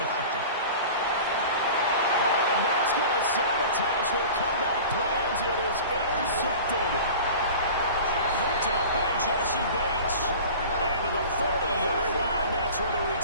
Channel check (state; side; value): inverted; both; correlation -0.38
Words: doctor. And that's going to sabotage their comeback plans. It is intercepted. Picked up by Jesse Bates. And to the 40-yard line, that's where the